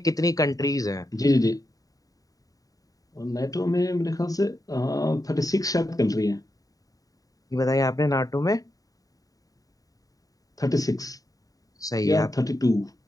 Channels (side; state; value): right; late; 0.18 ms